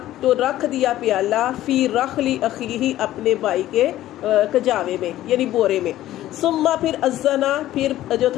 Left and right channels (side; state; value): right; quieter; 14.1 dB